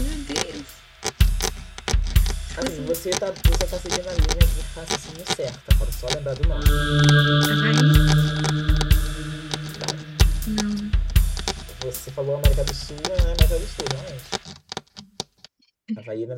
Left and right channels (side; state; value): both; identical; correlation 1.00